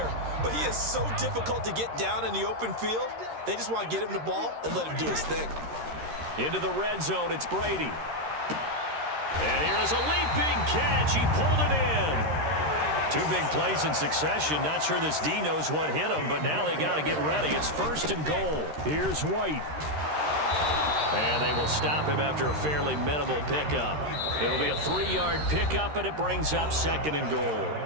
But he is so difficult to get down in the open field. They just want to get him the ball and let him do his thing. Into the red zone, it's Brady. And here is a leaping catch. He pulled it in. 2 big plays in succession. Not sure this D knows what hit him, but now they got to get ready. It's first and goal. Here's White. And they will stop him after a fairly minimal pickup. It'll be a 3-yard pickup, and it brings up second and goal.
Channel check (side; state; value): left; late; 13 ms